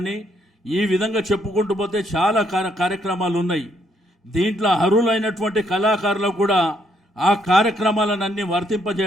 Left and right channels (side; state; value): both; normal; correlation 0.72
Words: ఈ విధంగా చెప్పుకుంటూ పోతే చాలా కార్యక్రమాలు ఉన్నాయి. దీంట్లో అర్హులైనటువంటి కళాకారులకు కూడా ఆ కార్యక్రమాలన్నీ